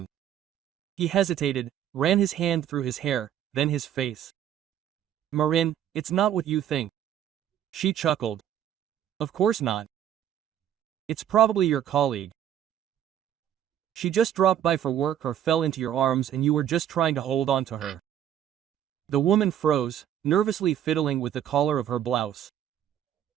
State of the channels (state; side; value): quieter; left; 10.4 dB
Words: He hesitated, ran his hand through his hair, then his face. "Marin, it's not what you think." She chuckled. "Of course not. It's probably your colleague. She just dropped by for work or fell into your arms and you were just trying to hold on to her." The woman froze, nervously fiddling with the collar of her blouse.